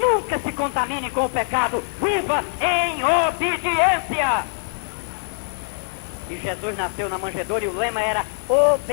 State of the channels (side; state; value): right; silent; digital silence